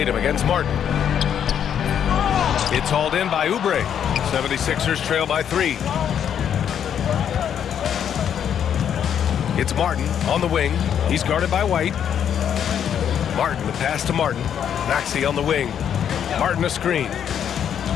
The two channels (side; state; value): right; quieter; 8.9 dB